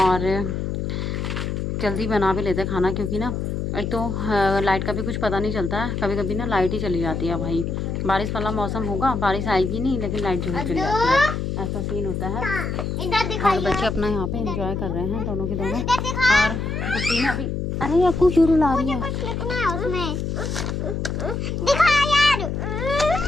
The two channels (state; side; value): noise; left; hum, 2 dB below the sound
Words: जल्दी बना भी लेते हैं खाना, क्योंकि ना एक तो लाइट का भी कुछ पता नहीं चलता है, कभी कभी ना लाइट ही चली जाती है। भाई बारिश वाला मौसम होगा, बारिश आएगी नहीं लेकिन लाइट जरूर चली जाती है, ऐसा सीन होता है। और बच्चे अपना यहाँ पे एंजॉय कर रहे हैं दोनों के दोनों। और गुड्डी ने अभी, अरे आपको क्यों रुला रही है?